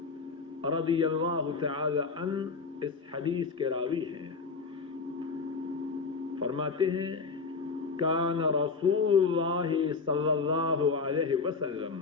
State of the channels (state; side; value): quieter; right; 4.7 dB